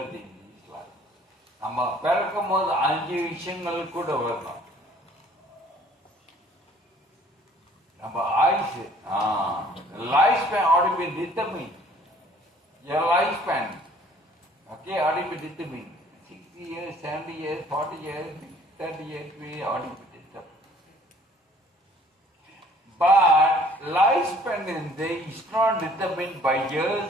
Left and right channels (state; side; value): normal; both; correlation 0.56